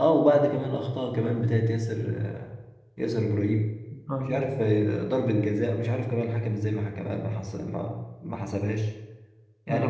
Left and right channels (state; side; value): identical; both; correlation 1.00